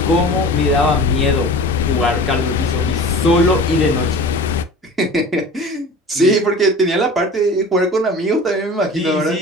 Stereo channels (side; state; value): both; normal; correlation 0.38